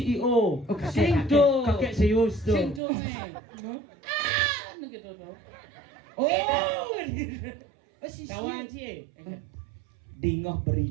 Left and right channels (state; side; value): drops out; left; at 2.8 s